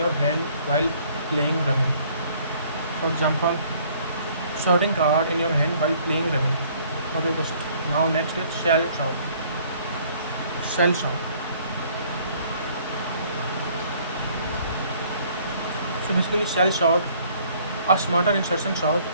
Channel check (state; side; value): inverted; both; correlation -0.59